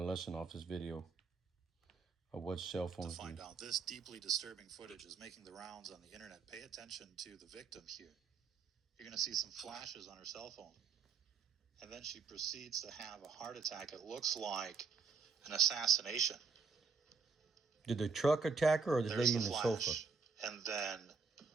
lesson off this video of what cell phones do. To find out, this deeply disturbing footage is making the rounds on the internet. Pay attention to the victim here. You're going to see some flashes on her cell phone. And then she proceeds to have a heart attack. It looks like an assassination. Did the truck attack her or the There's lady in the flash. sofa? And then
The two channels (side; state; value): left; quieter; 4.9 dB